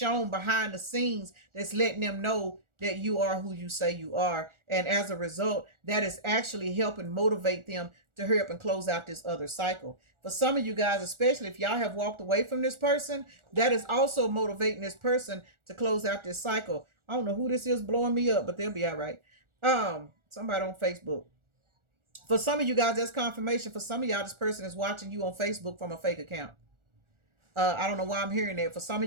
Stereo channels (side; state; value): left; late; 1.4 ms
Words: behind the scenes that's letting them know that you are who you say you are. And as a result, that is actually helping motivate them to hurry up and close out this other cycle. For some of you guys, especially if y'all have walked away from this person, that is also motivating this person to close out this cycle. I don't know who this is blowing me up, but they'll be all right. Somebody on Facebook. For some of you guys, that's confirmation. For some of y'all, this person is watching you on Facebook from a fake account. I don't know why I'm hearing that. For some